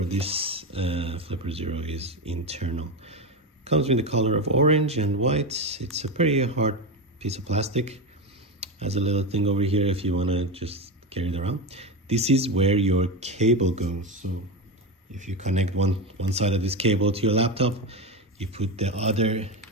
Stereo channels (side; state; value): both; normal; correlation 0.17